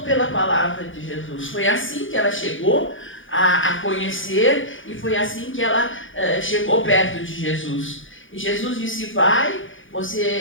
pela palavra de Jesus. Foi assim que ela chegou a conhecer, e foi assim que ela chegou perto de Jesus. E Jesus disse: vai,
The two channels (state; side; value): late; right; 0.57 ms